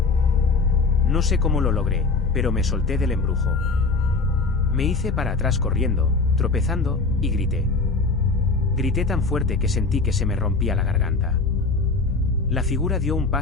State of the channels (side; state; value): right; quieter; 4.0 dB